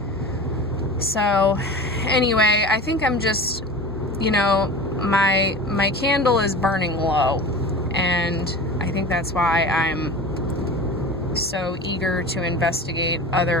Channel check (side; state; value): both; normal; correlation 0.34